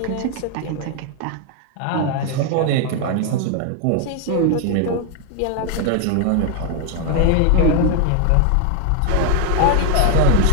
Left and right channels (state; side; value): different; both; correlation 0.00